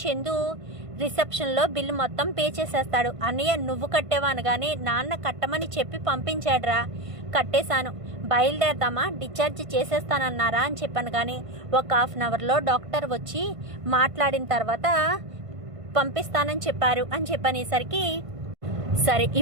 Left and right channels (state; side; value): late; left; 1.5 ms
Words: చందు రిసెప్షన్లో బిల్లు మొత్తం పే చేసేస్తాడు. అన్నయ్య నువ్వు కట్టేవా అనగానే నాన్న కట్టమని చెప్పి పంపించాడురా, కట్టేశాను, బయలుదేరదామా, డిశ్చార్జ్ చేసేస్తానన్నారా అని చెప్పాను. కానీ ఒక హాఫ్ అన్ అవర్లో డాక్టర్ వచ్చి మాట్లాడిన తర్వాత పంపిస్తానని చెప్పారు అని చెప్పనేసరికి సరే